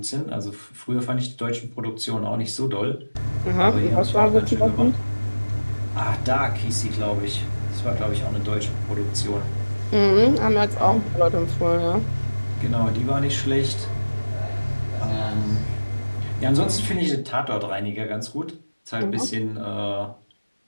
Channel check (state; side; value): inverted; both; correlation -1.00